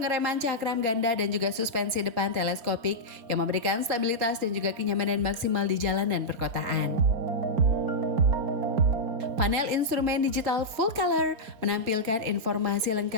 cakram ganda dan juga suspensi depan teleskopik yang memberikan stabilitas dan juga kenyamanan maksimal di jalanan perkotaan. Panel instrumen digital full color menampilkan informasi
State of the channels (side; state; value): left; late; 4.4 ms